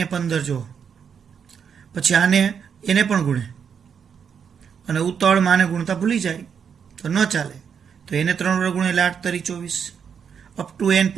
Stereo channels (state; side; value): quieter; left; 7.1 dB